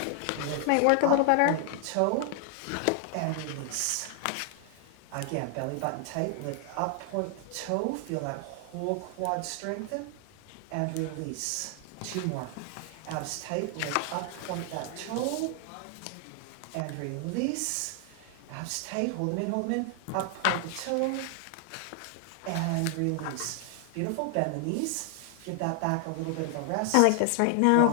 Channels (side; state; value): both; different; correlation 0.00